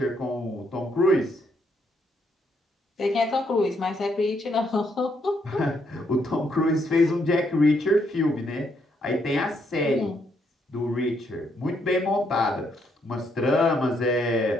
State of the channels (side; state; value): both; normal; correlation 0.74